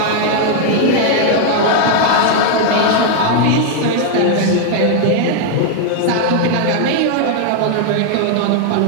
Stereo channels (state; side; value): different; both; correlation 0.00